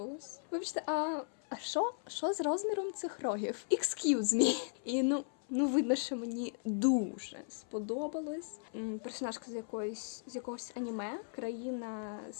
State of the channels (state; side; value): silent; right; 53 dB below the other